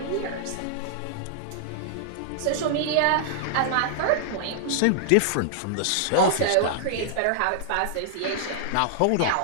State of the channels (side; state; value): both; different; correlation -0.01